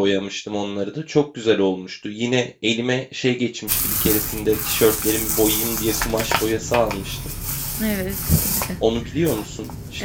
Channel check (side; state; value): both; identical; correlation 1.00